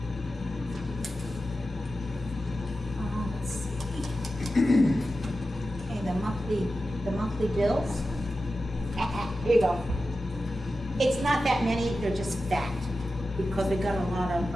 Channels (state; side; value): normal; both; correlation 0.92